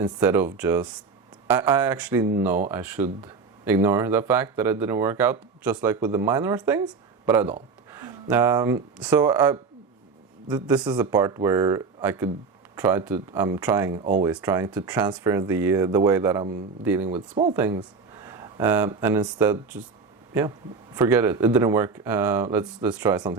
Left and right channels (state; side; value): quieter; left; 4.8 dB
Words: of just... I actually know I should ignore the fact that it didn't work out, just like with the minor things, but I don't. This is a part where I could always trying to transfer the way that I'm dealing with small things, and instead just forget it. It didn't work. Let's try